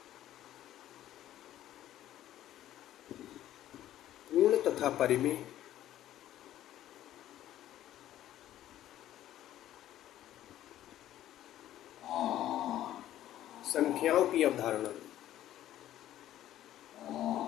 पूर्ण तथा परिमेय संख्याओं की अवधारणा।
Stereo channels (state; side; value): quieter; right; 12.8 dB